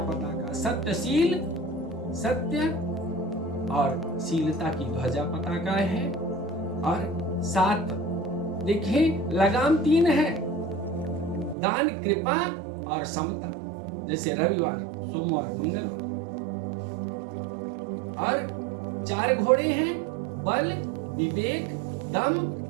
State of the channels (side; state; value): left; drops out; at 11.6 s